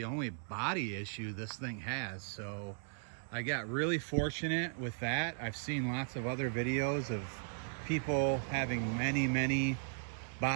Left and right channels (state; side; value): silent; left; digital silence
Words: only body issue this thing has. So I got really fortunate with that. I've seen lots of other videos of people having many